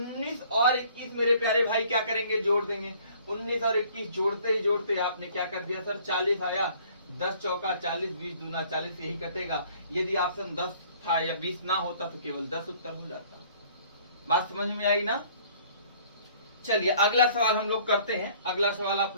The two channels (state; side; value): inverted; both; correlation -0.56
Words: और 21 मेरे प्यारे भाई क्या करेंगे? जोड़ देंगे। 19 और 21 जोड़ते ही जोड़ते आपने क्या कर दिया सर? 40 आया। 10 चौका 40, 20 दूना 40, यही कटेगा। यदि ऑप्शन 10 था या 20 ना होता तो केवल 10 उत्तर हो जाता। बात समझ में आई ना? चलिए अगला सवाल हम लोग करते हैं। अगला सवाल आप